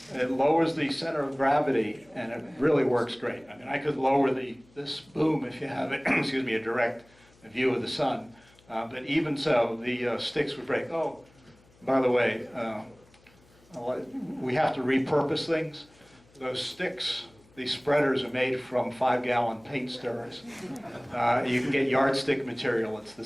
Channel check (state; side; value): noise; left; hum, 29 dB below the sound